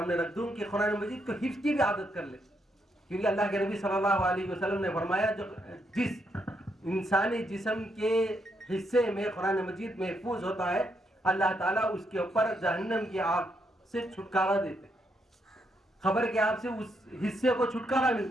رکھ دوں کہ قرآن مجید کو حفظ کی بھی عادت کر لے، کیونکہ اللہ کے نبی صلی اللہ علیہ وسلم نے فرمایا جس انسانی جسم کے حصے میں قرآن مجید محفوظ ہوتا ہے اللہ تعالیٰ اس کے اوپر جہنم کی آگ سے چھٹکارا دیتے، خبر کے آگ سے اس حصے کو چھٹکارا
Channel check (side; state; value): both; normal; correlation 0.78